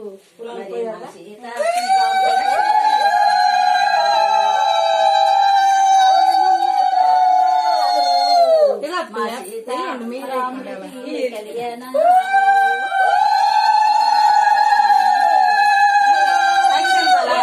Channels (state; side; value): identical; both; correlation 1.00